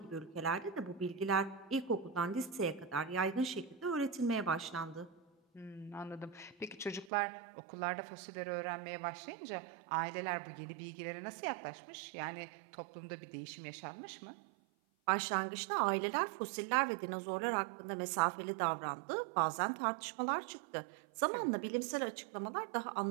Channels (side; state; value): left; drops out; at 7.1 s